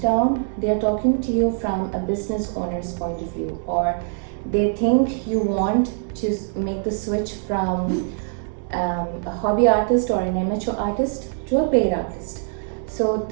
down, they are talking to you from a business owner's point of view, or they think you want to make the switch from a hobby artist or an amateur artist to a paid artist. So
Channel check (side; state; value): left; silent; 64 dB below the other